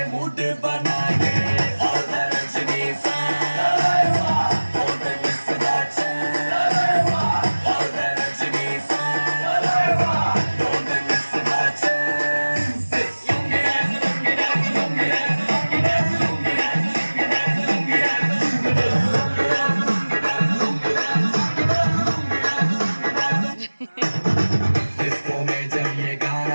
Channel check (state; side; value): inverted; both; correlation -1.00